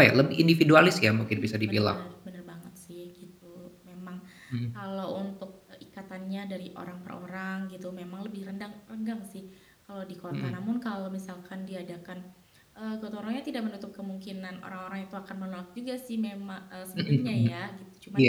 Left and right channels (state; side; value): identical; both; correlation 1.00